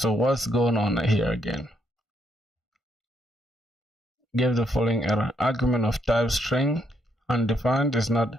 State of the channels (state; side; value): normal; both; correlation 0.75